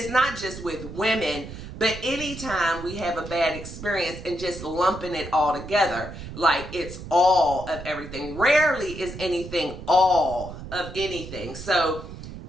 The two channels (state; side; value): noise; right; rumble, 11 dB below the sound